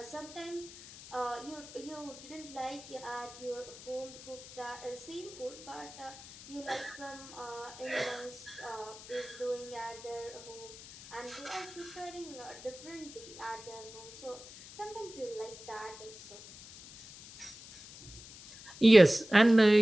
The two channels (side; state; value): left; noise; hiss, 16 dB below the sound